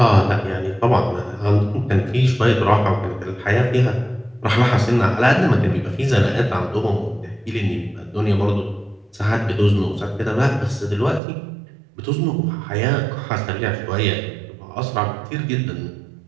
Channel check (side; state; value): left; drops out; at 11.2 s